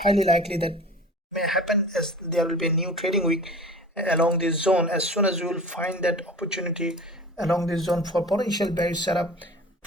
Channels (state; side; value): normal; both; correlation 0.39